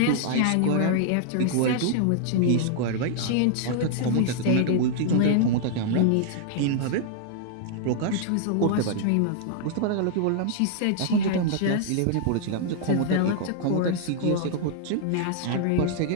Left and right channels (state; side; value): different; both; correlation -0.01